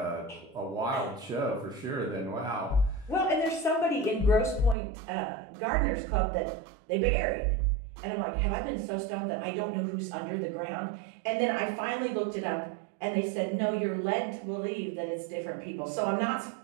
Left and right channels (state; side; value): drops out; left; at 4.8 s